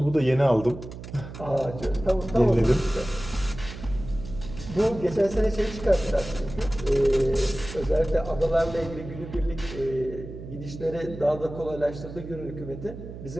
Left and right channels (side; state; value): right; noise; hum, 12 dB below the sound